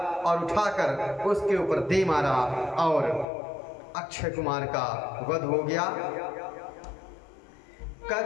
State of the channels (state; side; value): drops out; right; at 3.2 s